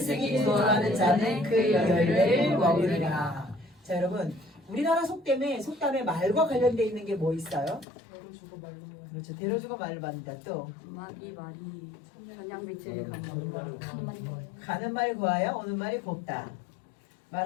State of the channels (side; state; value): right; drops out; at 7.9 s